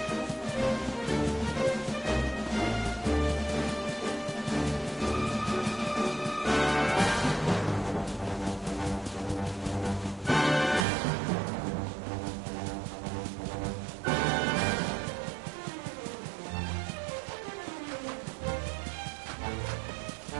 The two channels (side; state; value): left; drops out; at 10.9 s